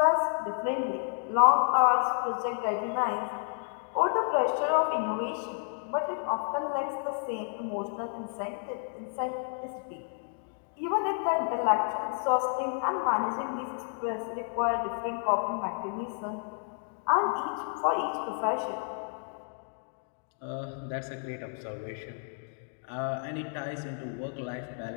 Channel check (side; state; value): right; silent; 57 dB below the other